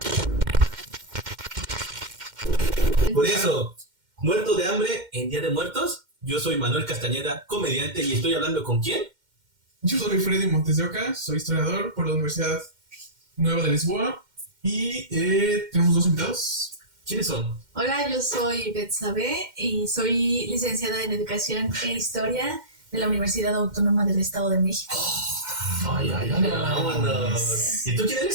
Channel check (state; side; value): late; left; 2.1 ms